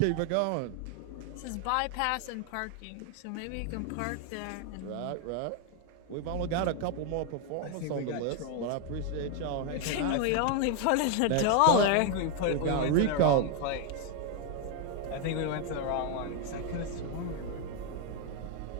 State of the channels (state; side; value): different; both; correlation 0.01